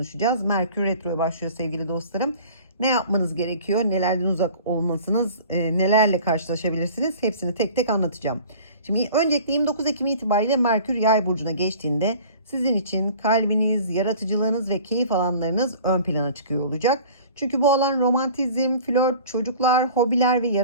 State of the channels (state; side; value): inverted; both; correlation -0.45